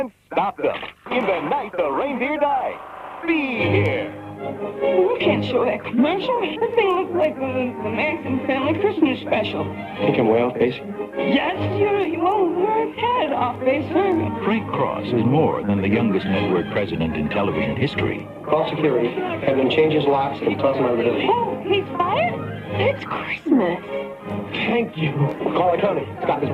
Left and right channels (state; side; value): identical; both; correlation 1.00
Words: stop them. In the night the reindeer die, be here. You can't show that commercial. That thing looks like the Manson family Christmas special. Think I'm way off base? Yes, you're well head off base, sir. Frank Cross is more than the youngest network president in television history. Call security. Have them change his locks and toss him out of the building. Oh, he's fired? It's Christmas. Thank you. Call the county. Stop his